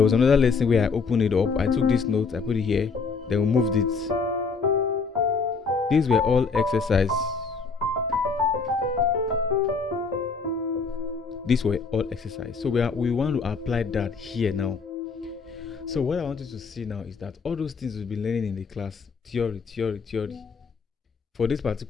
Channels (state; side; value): quieter; right; 4.9 dB